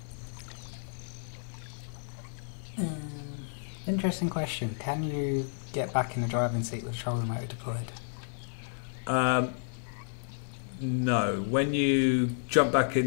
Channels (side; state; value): right; silent; digital silence